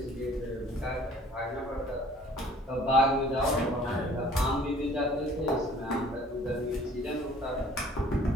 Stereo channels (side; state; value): both; normal; correlation 0.53